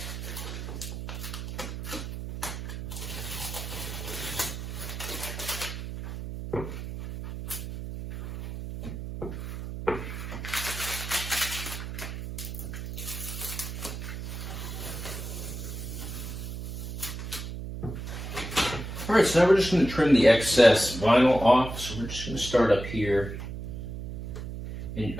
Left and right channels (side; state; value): right; noise; hum, 7 dB below the sound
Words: All right, so now we're just going to trim the excess vinyl off. So we're just going to start up here. And